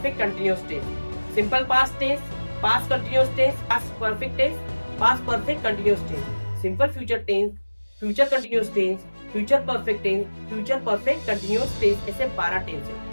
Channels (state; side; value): inverted; both; correlation -1.00